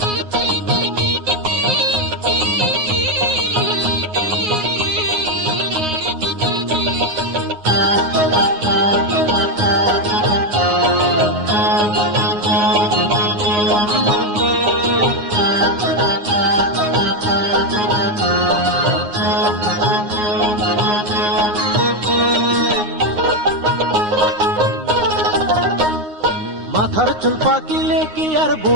মাথার চুল পাকিলে কি আর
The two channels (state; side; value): late; left; 9.6 ms